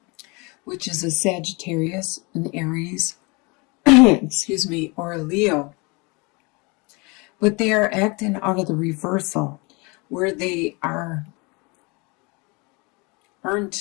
which is a Sagittarius, an Aries, excuse me, or a Leo. But they are acting out of the reversal, where they aren't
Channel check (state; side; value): quieter; right; 28.2 dB